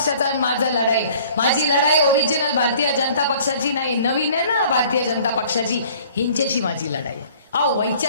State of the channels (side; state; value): both; inverted; correlation -0.52